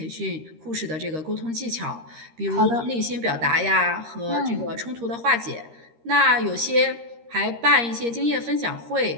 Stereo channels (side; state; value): left; late; 13 ms